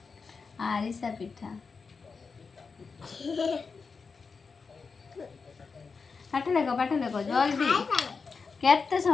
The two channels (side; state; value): right; quieter; 5.0 dB